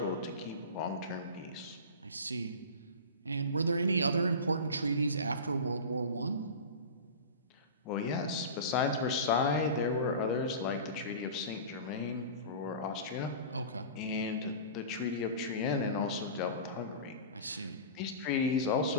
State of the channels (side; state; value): both; inverted; correlation -0.31